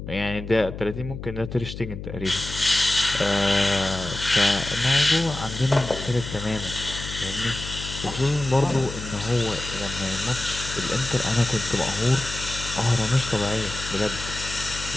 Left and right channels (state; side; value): noise; left; hum, 9 dB below the sound